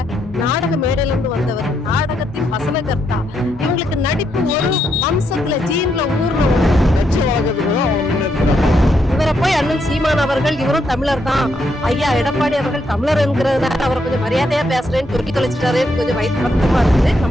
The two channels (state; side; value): normal; both; correlation 0.78